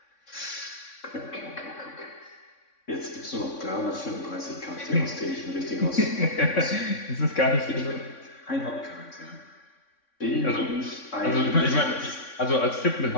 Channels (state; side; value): late; right; 3.6 ms